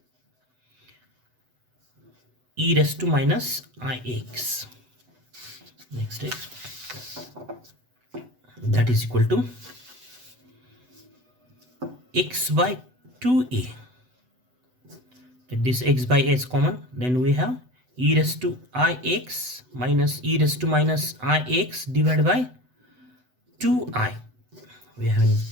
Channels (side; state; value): left; late; 8.0 ms